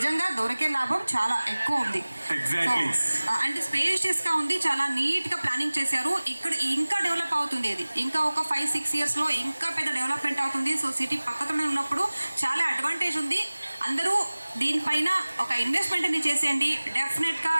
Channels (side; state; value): both; inverted; correlation -1.00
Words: దొరికే లాభం చాలా ఎక్కువ ఉంది. అంటే స్పేషియస్గా ఉంది, చాలా నీట్గా ప్లానింగ్ చేశారు. ఇక్కడ ఇంకా డెవలప్ అవుతుంది. ఇది ఇంకా ఒక 5-6 ఇయర్స్లో ఇంకా పెద్ద డెవలప్మెంట్ అవుతుంది. సో సిటీ పక్కనే ఉన్నప్పుడు చాలా అడ్వాంటేజ్ ఉంది. అందరూ దీనిపైన ఒక ఇన్వెస్ట్మెంట్ అని చేసేయండి. డెఫినెట్గా